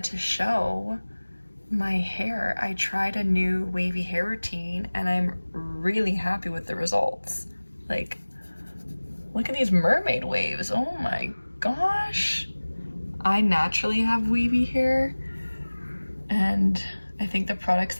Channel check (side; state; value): both; inverted; correlation -1.00